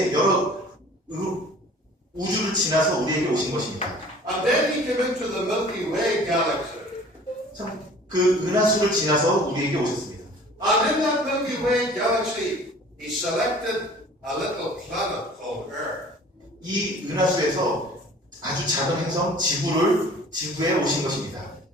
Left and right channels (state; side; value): normal; both; correlation 0.48